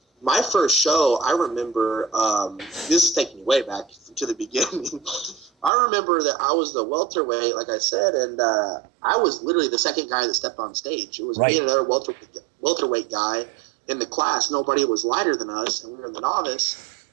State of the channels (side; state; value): left; drops out; at 5.7 s